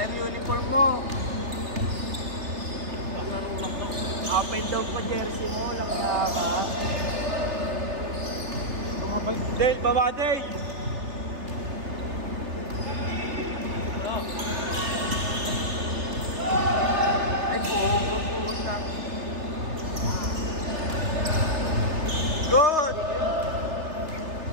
uniform mo. Open daw po jersey mo, lang ka. Tumabal. Dave, baba Dave! Ay, pupunta. Good!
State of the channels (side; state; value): left; late; 3.3 ms